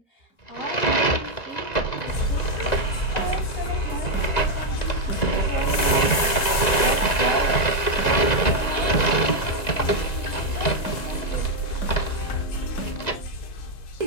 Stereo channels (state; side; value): late; right; 1.9 ms